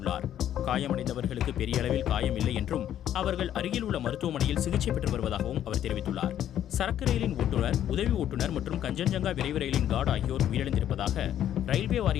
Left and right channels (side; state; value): right; quieter; 10.9 dB